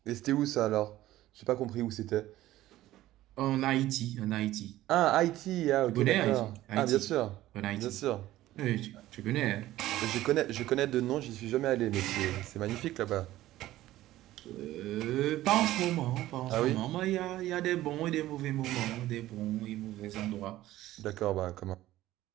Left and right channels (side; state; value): left; quieter; 15.2 dB